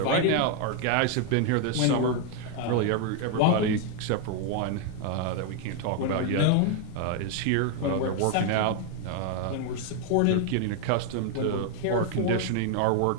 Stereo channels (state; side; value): different; both; correlation 0.01